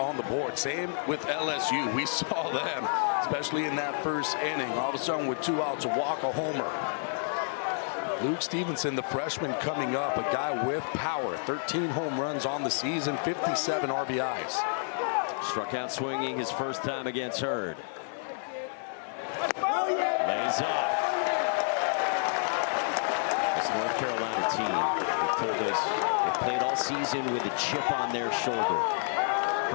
the board. Same with LSU. We saw them, especially in that first inning. All of a sudden, with 2 outs, a walk, a homer. Luke Stevenson, the freshman coming up, a guy with power. 13 home runs on the season, 57 RBIs. Struck out swinging his first time against Hurd. Lays off. This North Carolina team, they've told us they've played all season with a chip on their shoulder.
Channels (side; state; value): right; silent; digital silence